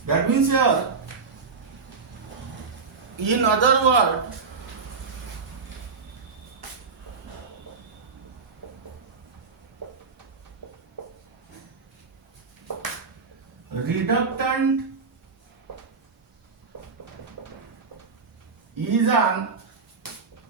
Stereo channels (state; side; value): quieter; left; 4.9 dB